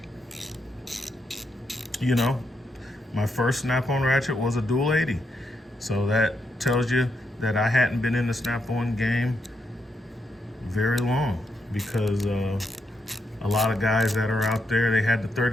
You know, my first Snap-on ratchet was a dual 80. So that tells you that I hadn't been in the Snap-on game very long, because a lot of guys that are out there, they had the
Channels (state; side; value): normal; both; correlation 0.81